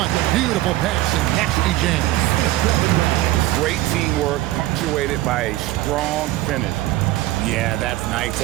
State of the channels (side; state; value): left; quieter; 16.2 dB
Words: Beautiful pass and nasty jam. Great teamwork punctuated by a strong finish. Yeah, that's nice